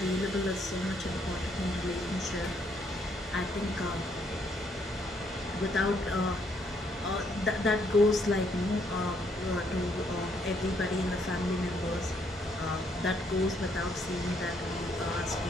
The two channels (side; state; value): both; normal; correlation 0.71